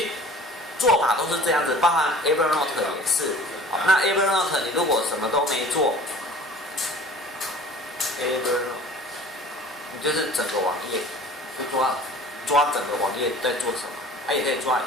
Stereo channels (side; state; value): both; normal; correlation 0.45